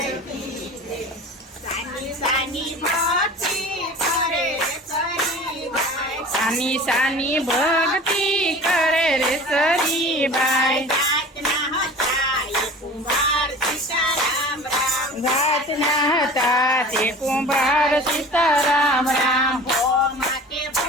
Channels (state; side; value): normal; both; correlation 0.40